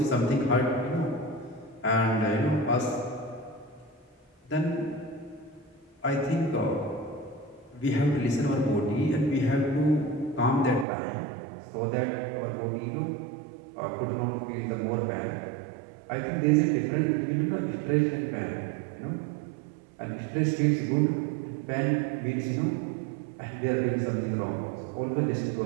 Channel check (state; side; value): drops out; left; at 10.9 s